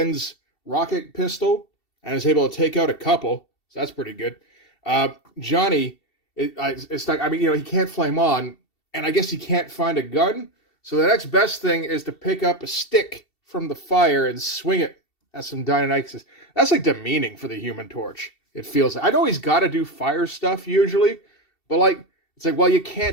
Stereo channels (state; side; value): late; right; 2.7 ms